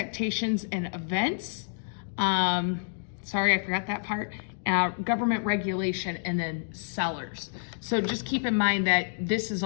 and events. Sorry, I forgot that part. Government regulation, and then sellers. So just keep in mind that this is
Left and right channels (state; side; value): silent; right; digital silence